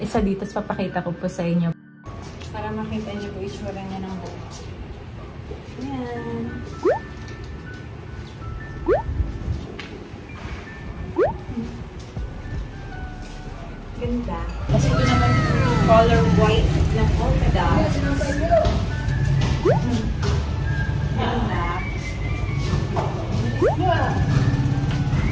isa dito. Papakita ko po sa inyo. Para makita niyo po itsura niya ng buhok. Ayan. Ganda. Kasi ito naman yung color white na polka dots. Ganda.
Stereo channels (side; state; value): both; identical; correlation 1.00